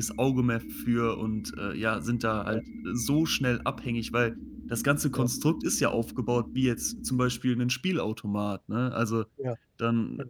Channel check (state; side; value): identical; both; correlation 1.00